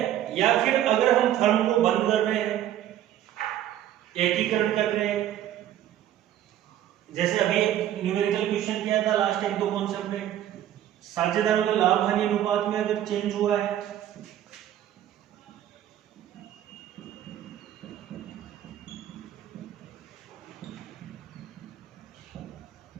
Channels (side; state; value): left; quieter; 11.7 dB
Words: या फिर अगर हम फर्म को बंद कर रहे हैं, एकीकरण कर रहे हैं, जैसे अभी एक न्यूमेरिकल क्वेश्चन किया था लास्ट 1-2 कॉन्सेप्ट में, साझेदारों के लाभ हानि अनुपात में अगर चेंज हुआ है,